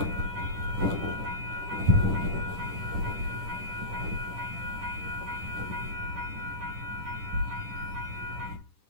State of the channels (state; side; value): late; left; 10 ms